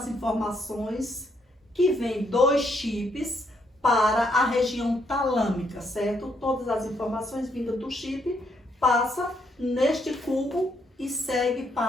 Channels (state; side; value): normal; both; correlation 0.74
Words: informações que vêm dos chips para a região talâmica, certo? Todas as informações vindas do chip passa neste cubo e segue